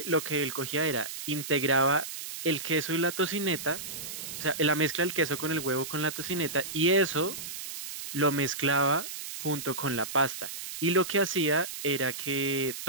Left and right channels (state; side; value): noise; right; hiss, 8 dB below the sound